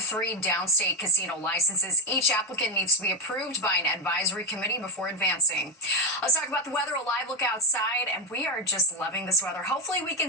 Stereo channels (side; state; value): both; normal; correlation 0.07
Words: downstate casino licenses. Each applicant needs to be approved by an advisory committee before advancing. Let's talk about the weather. A live look outside, and we are just loving this weather. Hopefully, we can